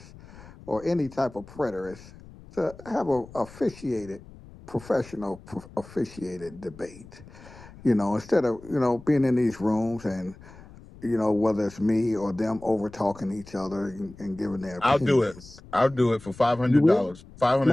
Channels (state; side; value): noise; left; rumble, 20 dB below the sound